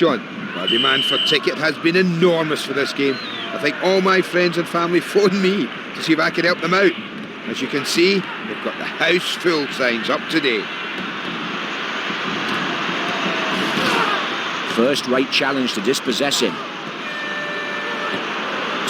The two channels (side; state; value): both; identical; correlation 1.00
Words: Well, demand for ticket has been enormous for this game. I think all my friends and family phoned me to see if I could help them out. As you can see, they've got the house full signs up today. First-rate challenge to dispossess him.